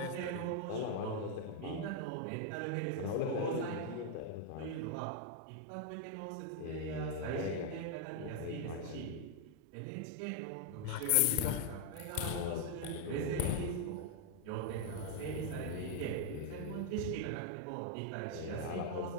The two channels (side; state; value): both; different; correlation 0.00